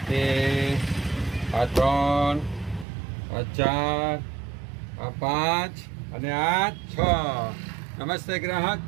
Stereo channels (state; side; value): drops out; left; at 2.9 s